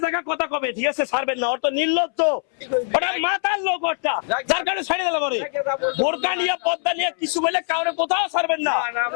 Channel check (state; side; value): silent; right; 64 dB below the other